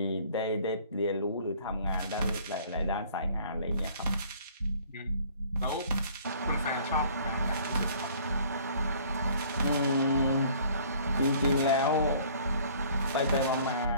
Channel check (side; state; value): both; inverted; correlation -0.54